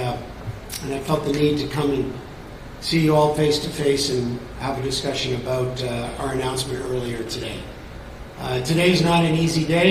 and I felt the need to come and see you all face to face and have a discussion about our announcement earlier today. Today's not an easy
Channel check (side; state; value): both; identical; correlation 1.00